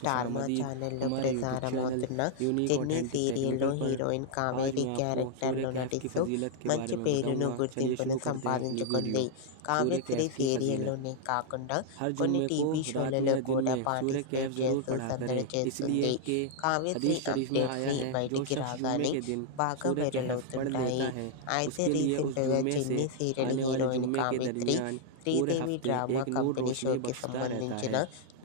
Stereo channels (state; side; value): different; both; correlation -0.01